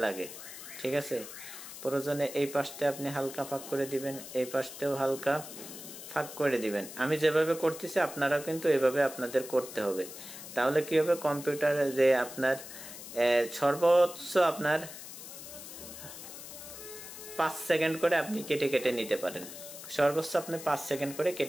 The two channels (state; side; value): noise; left; hiss, 12 dB below the sound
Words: লাগে। ঠিক আছে, প্রয়োজনে এই পাশতে আপনি হালকা ফাঁক করে দিবেন, এই পাশতেও হালকা ফাঁক করে দিবেন। আমি যেভাবে করতেছি আপনারাও কিন্তু এভাবে আপনাদের করতে হবে। তাহলে কি হবে, কম্পিউটারে যে আপনার সর্বোচ্চ আপনার 5 সেকেন্ড করে আপনি কেটে কেটে নিতে পারেন। সর্বোচ্চ আপনি 5 সেকেন্ড করে